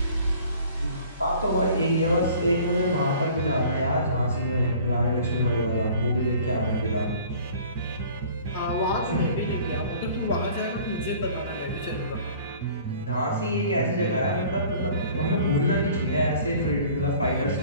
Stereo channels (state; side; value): inverted; both; correlation -0.49